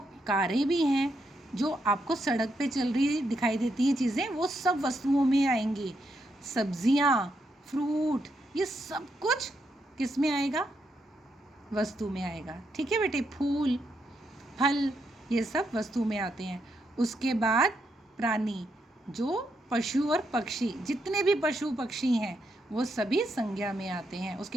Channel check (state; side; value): normal; both; correlation 0.80